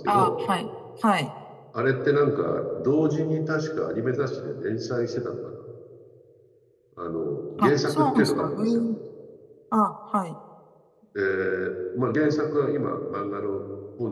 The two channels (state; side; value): identical; both; correlation 1.00